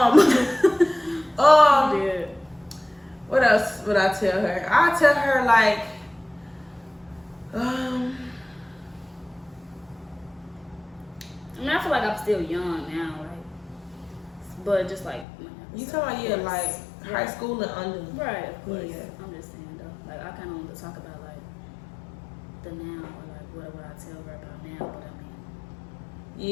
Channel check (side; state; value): right; drops out; at 15.2 s